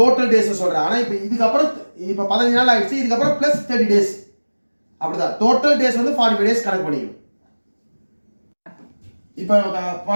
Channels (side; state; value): both; inverted; correlation -1.00